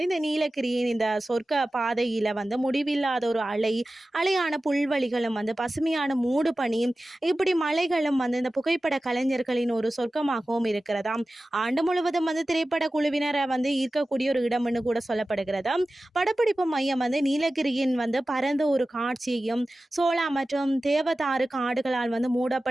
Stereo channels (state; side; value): normal; both; correlation 0.95